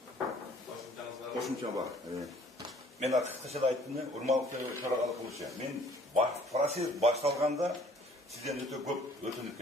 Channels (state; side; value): normal; both; correlation 0.56